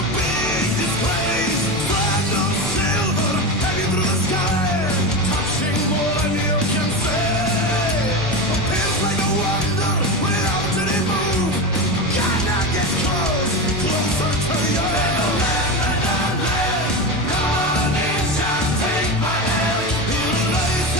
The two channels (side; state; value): both; normal; correlation 0.20